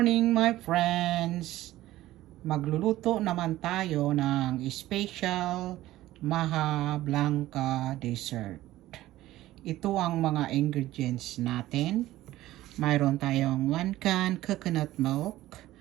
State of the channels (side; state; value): left; quieter; 15.6 dB